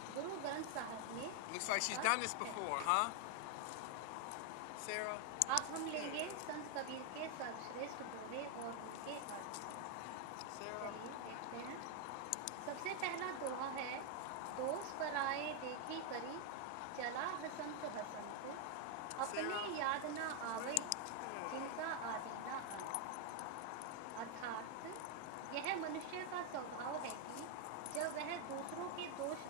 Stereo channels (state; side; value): different; both; correlation 0.00